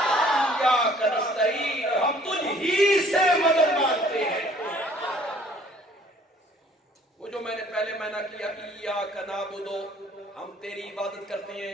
ایاک نستعین، ہم تجھ ہی سے مدد مانگتے ہیں. وہ جو میں نے پہلے معنی کیا ایاک نعبد، ہم تیری عبادت کرتے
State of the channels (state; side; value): normal; both; correlation 0.57